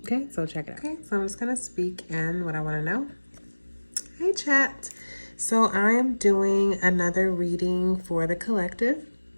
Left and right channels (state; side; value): inverted; both; correlation -1.00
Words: Okay, so check it out. Okay, so I'm just going to speak in what I want to know. Hey, Chat. So I am doing another reading for the collective